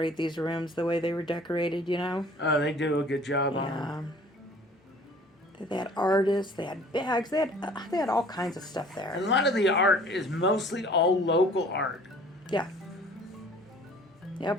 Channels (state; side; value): normal; both; correlation 0.50